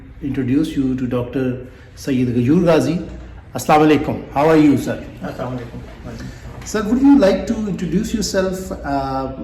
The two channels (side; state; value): both; identical; correlation 1.00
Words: introduce you to Dr. Sayyid Ghayur Ghazi. Assalamu alaikum. How are you, sir? Assalamu alaikum. Sir, would you like to introduce yourself